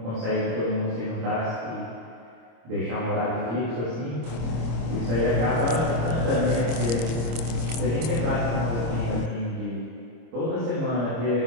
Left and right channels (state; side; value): late; left; 26 ms